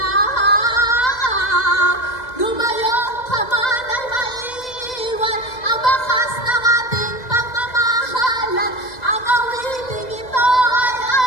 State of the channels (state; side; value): late; right; 2.0 ms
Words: Lumayo ka man ay maiiwan ang bakas ng ating pagmamahalan. Ang awiting ito ay